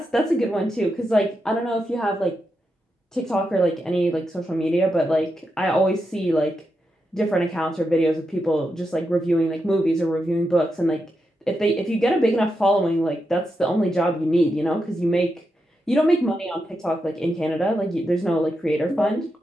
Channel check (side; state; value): both; normal; correlation 0.86